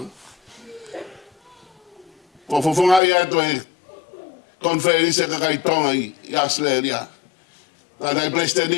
Ko whawhungai atu e konferense kakai tonga i Australia. Tādai pleste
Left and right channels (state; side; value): drops out; right; at 3.0 s